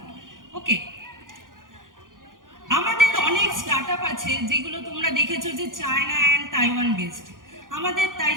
ওকে, আমাদের অনেক স্টার্টআপ আছে যেগুলো তোমরা দেখেছো যে চায়না অ্যান্ড তাইওয়ান বেসড। আমাদের তাই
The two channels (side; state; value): left; late; 0.90 ms